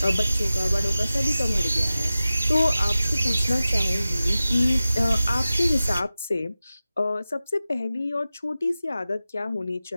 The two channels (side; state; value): both; inverted; correlation -0.95